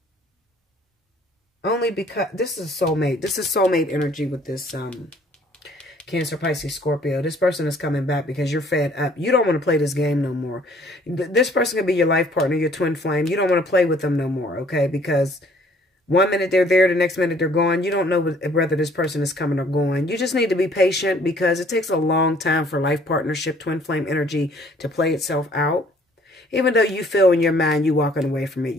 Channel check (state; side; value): normal; both; correlation 0.59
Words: Only because this is soulmate. This is soulmate energy with this Cancer, Pisces, Scorpio. This person is coming back because you're fed up. You don't want to play this game no more. This person could be your life partner, your twin flame. You don't want to play with them no more, okay? Because one minute they're there, the next minute they're gone. You don't know whether this person is coming or going. You just need to be patient because it takes a long time for life partnership, twin flame energy to play itself out. Even though you feel in your mind you walking away from it,